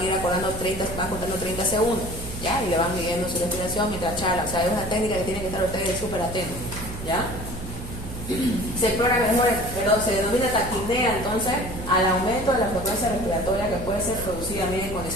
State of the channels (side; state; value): right; noise; hum, 10 dB below the sound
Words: ir acordando 30, van contando 30 segundos, ¿ya? Y le van midiendo su respiración mientras charla. O sea, es una técnica que tienen que estar ustedes súper atentos, ¿ya? Se explora mejor, se denomina taquipnea entonces al aumento de la frecuencia respiratoria, que puede ser producida también en